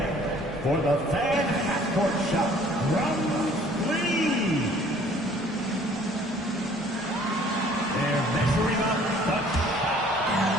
for the fan half-court shot from 3. They're measuring up the shot.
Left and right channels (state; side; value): normal; both; correlation 0.55